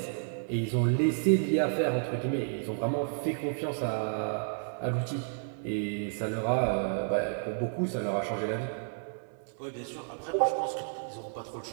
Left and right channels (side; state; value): left; silent; 57 dB below the other